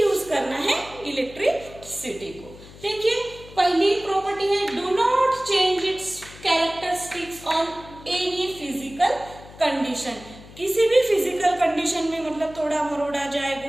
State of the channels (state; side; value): noise; left; hum, 19 dB below the sound